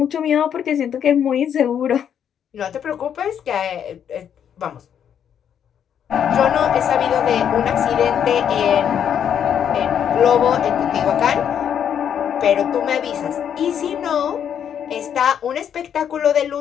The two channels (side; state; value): right; quieter; 8.8 dB